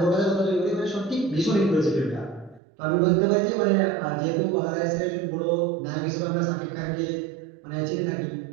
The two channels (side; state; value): left; drops out; at 2.6 s